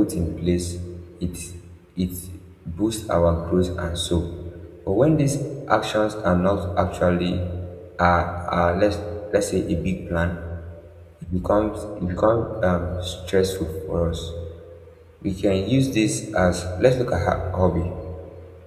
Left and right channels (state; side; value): identical; both; correlation 1.00